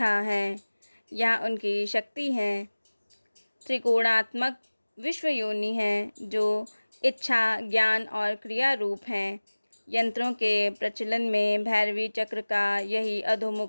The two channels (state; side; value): inverted; both; correlation -1.00